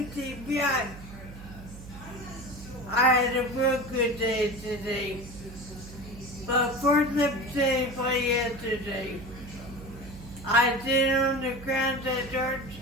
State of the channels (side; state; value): right; noise; hum, 15 dB below the sound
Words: TBI, I had a real good day today. But first episode for yesterday, I did on the ground at church,